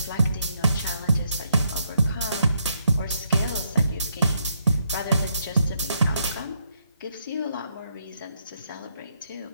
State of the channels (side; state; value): both; inverted; correlation -0.75